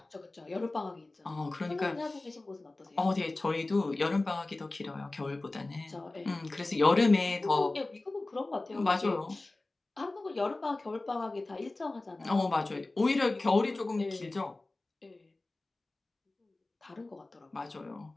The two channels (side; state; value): right; quieter; 3.0 dB